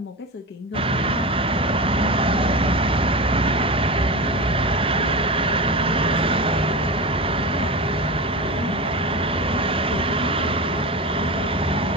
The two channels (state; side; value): normal; both; correlation 0.24